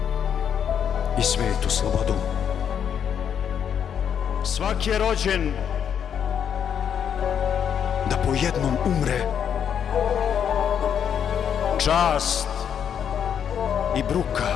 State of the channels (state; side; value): quieter; right; 8.3 dB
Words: i svetu slobodu. Svak je rođen da po jednom umre, čast i bruka